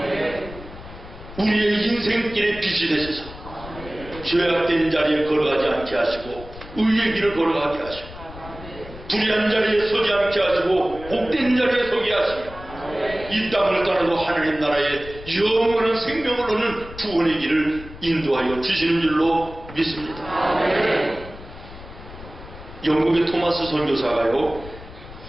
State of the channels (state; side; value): noise; left; rumble, 15 dB below the sound